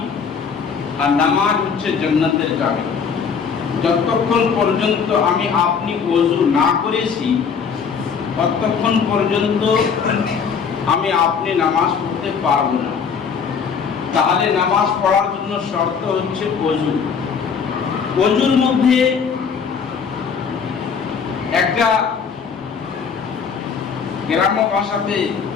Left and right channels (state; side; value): quieter; right; 6.2 dB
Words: আর নামাজ হচ্ছে জান্নাতের চাবি। যতক্ষণ পর্যন্ত আমি আপনি ওযু না করেছি ততক্ষণ পর্যন্ত আমি আপনি নামাজ পড়তে পারবো না। তাহলে নামাজ পড়ার জন্য শর্ত হচ্ছে ওযু। ওযুর মধ্যে একটা গ্রাম্য ভাষাতে